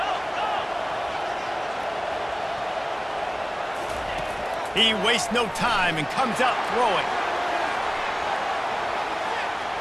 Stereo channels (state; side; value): identical; both; correlation 1.00